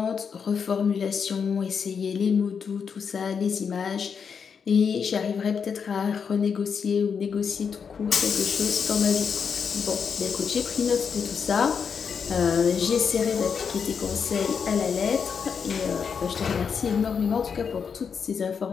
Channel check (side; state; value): right; quieter; 6.4 dB